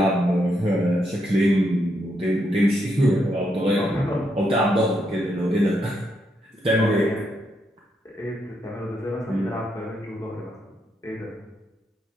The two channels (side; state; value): both; normal; correlation 0.79